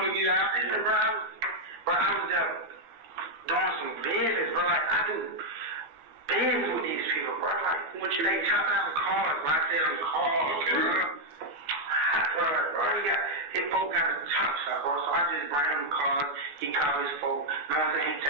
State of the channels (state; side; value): late; left; 14 ms